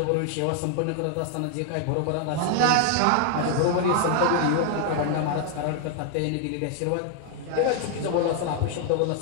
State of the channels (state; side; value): different; both; correlation 0.00